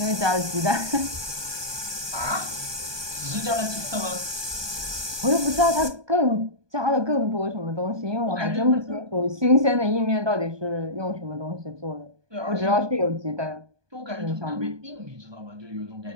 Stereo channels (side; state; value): left; late; 1.2 ms